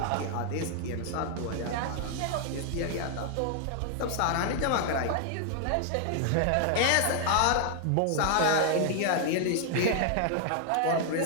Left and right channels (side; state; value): both; different; correlation 0.00